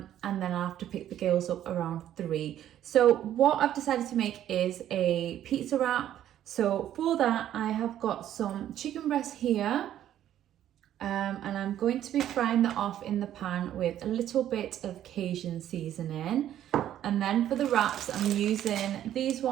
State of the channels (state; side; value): quieter; left; 11.5 dB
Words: then I'll have to pick the girls up around 3. So what I've decided to make is a pizza wrap. So for that, I have got some chicken breast here. And I'm going to be frying that off in the pan with a little bit of Cajun seasoning. And then for the wraps, I'm using these